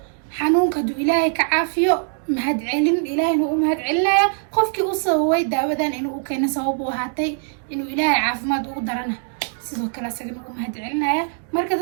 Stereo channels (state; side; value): silent; left; digital silence